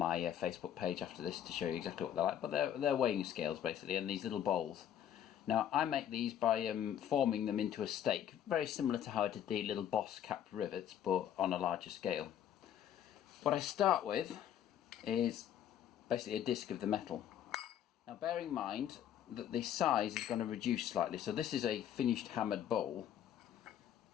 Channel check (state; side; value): quieter; right; 10.2 dB